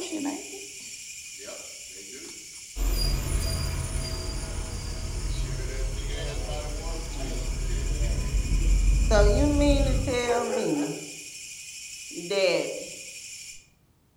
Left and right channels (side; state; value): both; identical; correlation 1.00